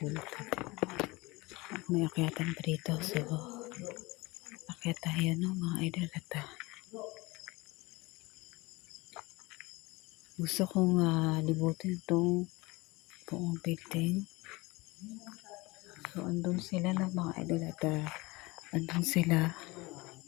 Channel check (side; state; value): right; quieter; 23.2 dB